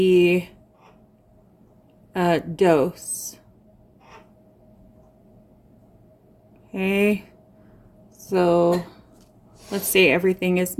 dose. Okay, so let's say everything is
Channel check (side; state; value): both; identical; correlation 1.00